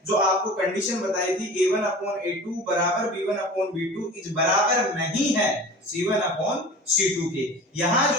जो आपको कंडीशन बताई थी A1 अपॉन A2 बराबर B1 अपॉन B2 इस बराबर नहीं है C1 अपॉन C2 के, यहाँ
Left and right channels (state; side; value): normal; both; correlation 0.38